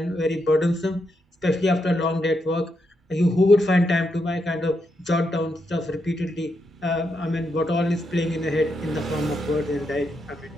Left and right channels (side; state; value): both; normal; correlation 0.82